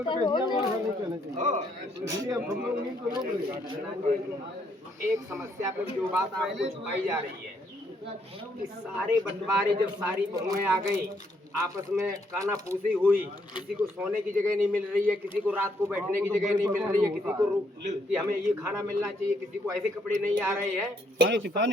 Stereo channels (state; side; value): normal; both; correlation 0.72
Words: नहीं कहना चाहिए, इसलिए अब हम लोग नहीं तो लोग एक समस्या पे जो बात आपको छुपाई जा रही है कि सारे बंटवारे जब सारी बहुएं आ गई, आपस में काना फूसी हुई, किसी को सोने की जगह नहीं मिल रही है, किसी को रात को बैठने की जगह नहीं मिल रही है, किसी को कि हमें ये खाना मिलना चाहिए, किसी को ऐसे कपड़े नहीं आ रहे हैं।